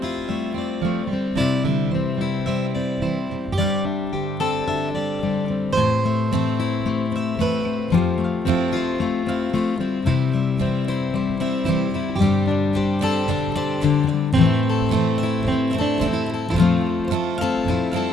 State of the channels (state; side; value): normal; both; correlation 0.73